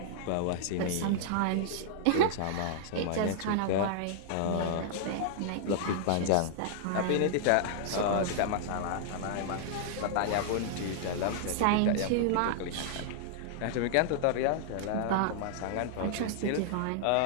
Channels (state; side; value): different; both; correlation -0.01